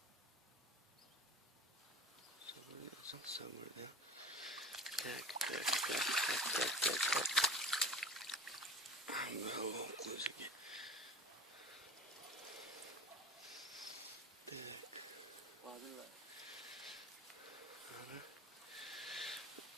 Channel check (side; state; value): both; normal; correlation 0.39